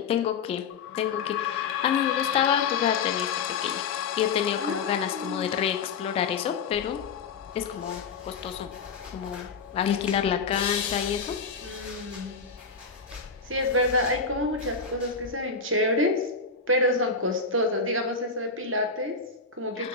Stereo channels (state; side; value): quieter; right; 4.9 dB